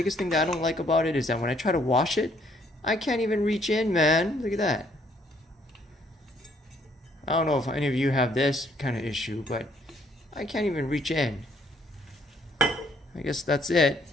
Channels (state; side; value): normal; both; correlation 0.66